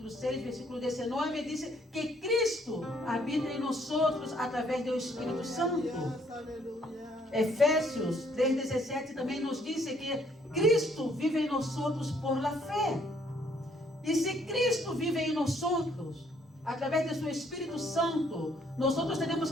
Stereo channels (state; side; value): normal; both; correlation 0.66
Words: 6, versículo 19, diz que Cristo habita em nós através do Espírito Santo. Efésios 3:17 também nos diz que Cristo vive em nós por la fé. E se Cristo vive em nós, através de seu Espírito Santo, nós temos